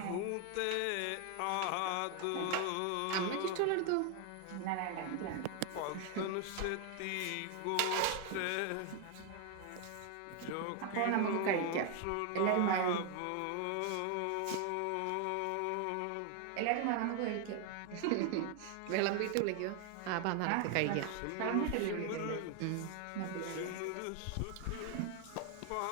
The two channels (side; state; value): both; different; correlation 0.01